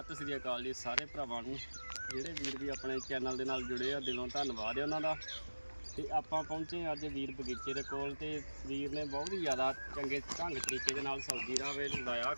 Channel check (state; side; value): inverted; both; correlation -1.00